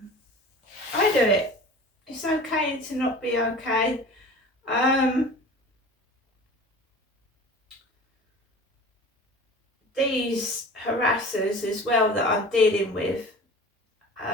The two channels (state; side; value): normal; both; correlation 0.39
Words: It's okay to not be okay. These harassers as well that I'm dealing with,